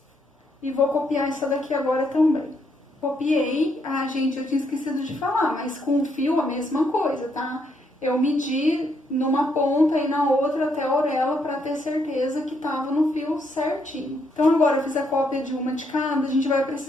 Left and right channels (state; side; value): normal; both; correlation 0.75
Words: E vou copiar essa daqui agora também. Copiei, gente, eu tinha esquecido de falar, mas com o fio a mesma coisa, tá? Eu medi numa ponta e na outra até a orelha para ter certeza que tava no fio certinho. Então agora eu fiz a cópia de uma de cada, a gente vai